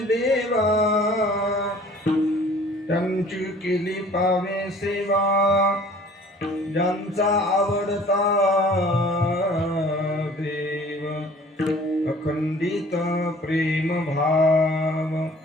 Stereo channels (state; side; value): normal; both; correlation 0.50